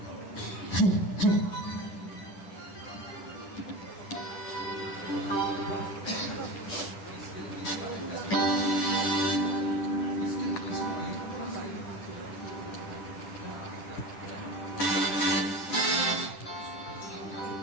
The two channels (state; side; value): late; right; 10 ms